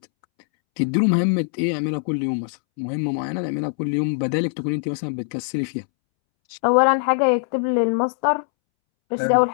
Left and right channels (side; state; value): right; silent; 64 dB below the other